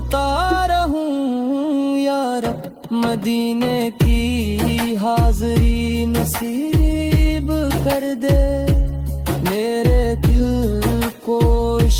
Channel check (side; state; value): both; identical; correlation 1.00